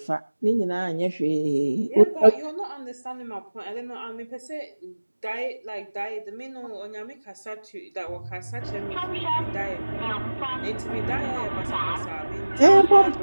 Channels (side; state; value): both; inverted; correlation -1.00